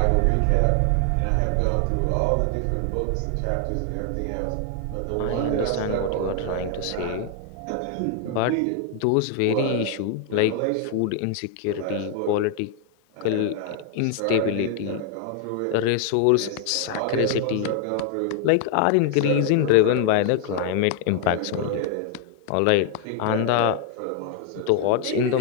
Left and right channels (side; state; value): both; different; correlation 0.00